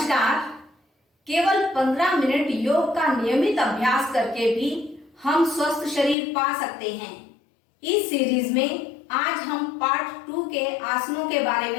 केवल 15 मिनट योग का नियमित अभ्यास करके भी हम स्वस्थ शरीर पा सकते हैं। इस सीरीज में आज हम पार्ट 2 के आसनों के बारे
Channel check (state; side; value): drops out; right; at 6.2 s